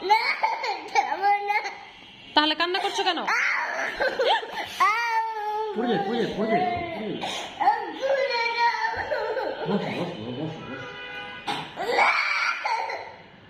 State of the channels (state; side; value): identical; both; correlation 1.00